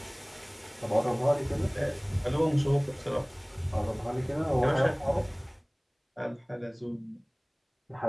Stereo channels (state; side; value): identical; both; correlation 1.00